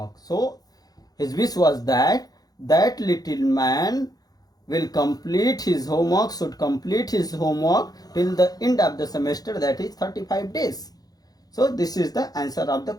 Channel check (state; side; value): late; right; 0.19 ms